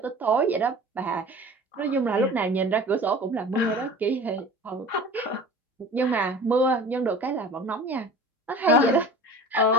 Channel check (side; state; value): both; normal; correlation 0.39